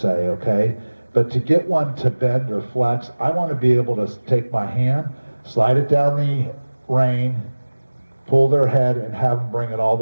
okay? But to get one to bend or flex, I want to be able to take my hand, slide it down the rein, pull their head, and have them bring it all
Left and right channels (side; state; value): both; inverted; correlation -1.00